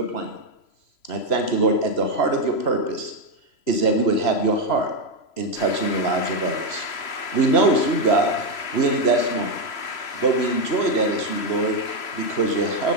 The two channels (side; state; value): right; late; 3.0 ms